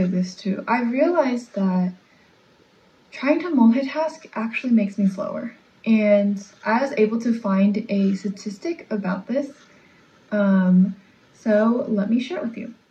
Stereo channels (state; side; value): identical; both; correlation 1.00